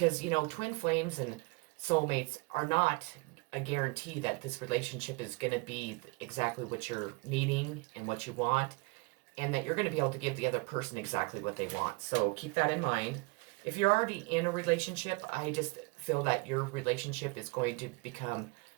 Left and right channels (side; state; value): left; quieter; 27.5 dB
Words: twin flames and soulmates are not a guarantee that this relationship is going to be exactly what you're needing and what you want, and that you're going to be able to give the other person exactly what they want. So keep that in mind. If you're already in a relationship, I just feel that your relationship is going to become